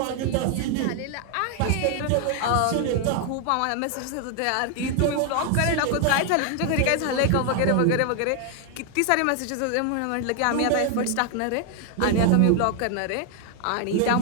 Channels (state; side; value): different; both; correlation 0.00